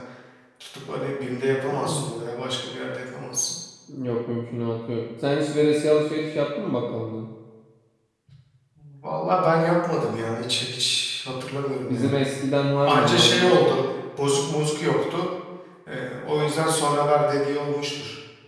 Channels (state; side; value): identical; both; correlation 1.00